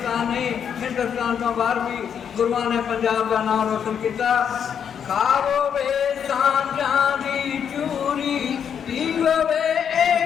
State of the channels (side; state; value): right; quieter; 7.9 dB